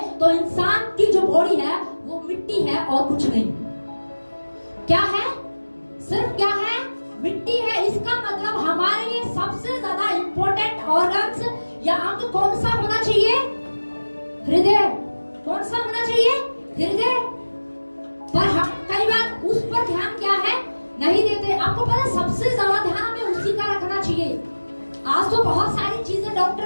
तो इंसान की जो बॉडी है वो मिट्टी है और कुछ नहीं। क्या है? सिर्फ क्या है? मिट्टी है। इसका मतलब हमारे लिए सबसे ज्यादा इंपॉर्टेंट ऑर्गन्स या अंग कौन सा होना चाहिए? हृदय। कौन सा होना चाहिए? हृदय। पर हम कई बार उस पर ध्यान क्या है नहीं देते। आपको पता, सबसे ज्यादा ध्यान हमें उसी का रखना चाहिए। आज तो बहुत सारी चीजें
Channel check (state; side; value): inverted; both; correlation -1.00